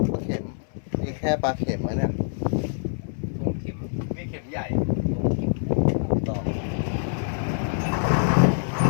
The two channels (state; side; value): silent; right; 60 dB below the other